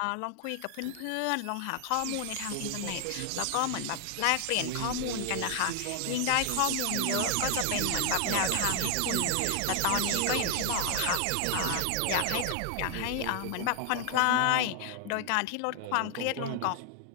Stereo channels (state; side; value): different; both; correlation 0.00